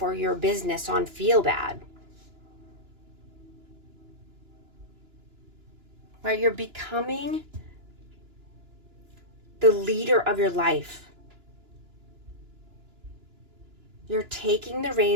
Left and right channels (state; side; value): late; left; 2.9 ms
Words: or your business on feel bad, right? You're becoming the leader of your life. You're taking the